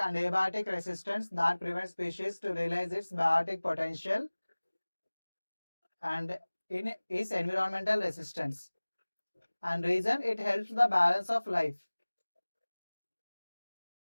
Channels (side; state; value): both; inverted; correlation -1.00